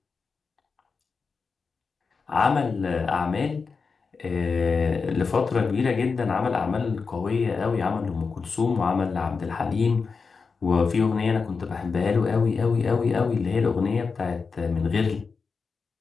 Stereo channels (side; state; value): right; quieter; 4.9 dB